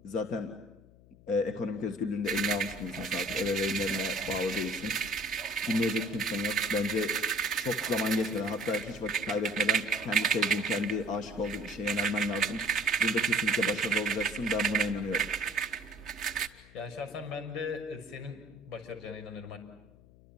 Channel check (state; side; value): noise; left; hum, 25 dB below the sound